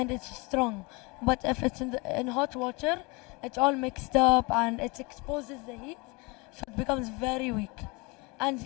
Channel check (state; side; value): quieter; right; 27.2 dB